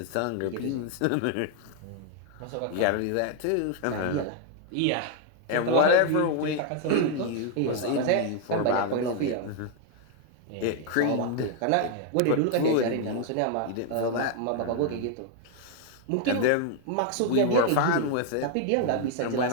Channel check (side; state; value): both; different; correlation 0.00